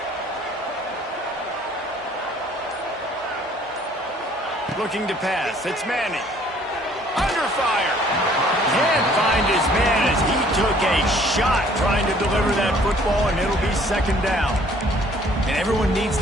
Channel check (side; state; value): both; normal; correlation 0.58